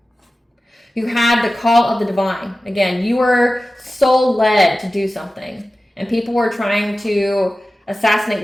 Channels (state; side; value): normal; both; correlation 0.95